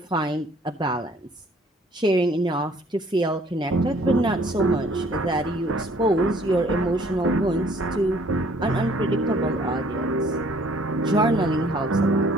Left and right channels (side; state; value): both; normal; correlation 0.58